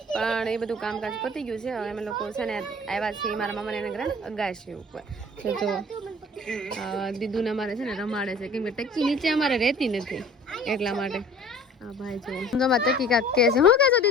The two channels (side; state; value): both; normal; correlation 0.48